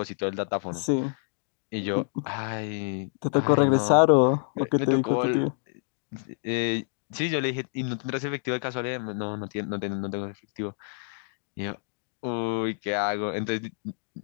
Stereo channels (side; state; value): right; silent; 60 dB below the other